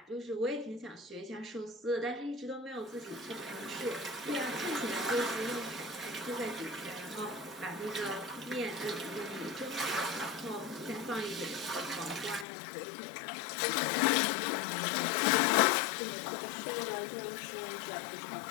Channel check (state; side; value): drops out; right; at 12.5 s